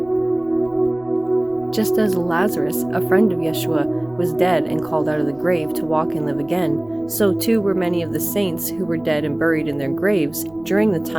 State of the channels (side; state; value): right; noise; rumble, 28 dB below the sound